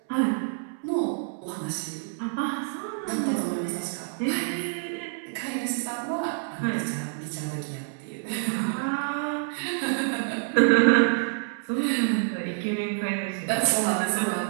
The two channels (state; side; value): silent; left; 60 dB below the other